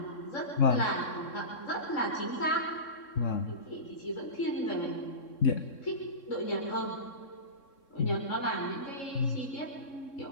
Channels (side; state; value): right; late; 3.7 ms